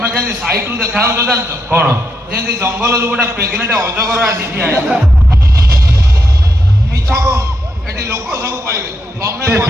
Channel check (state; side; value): normal; both; correlation 0.81